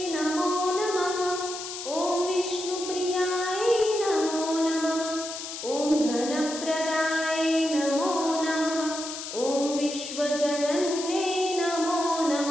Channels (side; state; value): left; noise; hiss, 8 dB below the sound